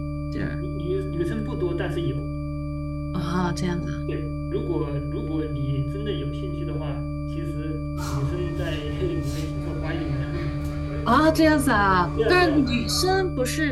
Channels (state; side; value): identical; both; correlation 1.00